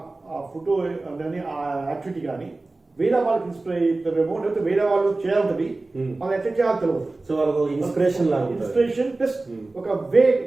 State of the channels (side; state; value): left; quieter; 3.2 dB